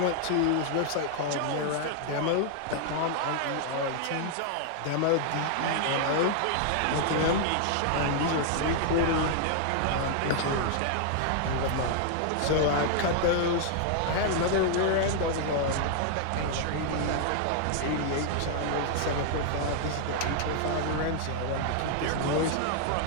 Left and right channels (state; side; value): different; both; correlation 0.00